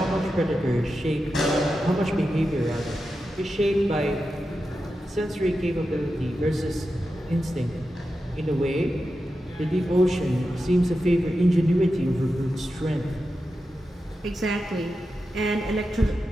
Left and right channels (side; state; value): both; normal; correlation 0.90